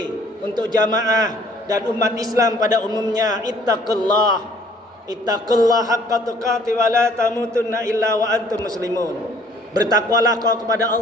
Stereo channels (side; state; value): both; normal; correlation 0.58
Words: untuk jamaah dan umat Islam pada umumnya, ittaqullah haqqa tuqatih wa la tamutunna illa wa antum muslimun. Bertakwalah kau kepada